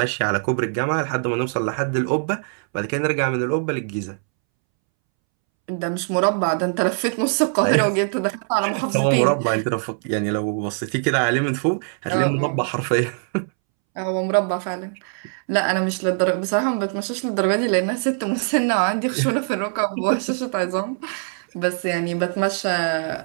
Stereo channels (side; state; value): left; silent; 64 dB below the other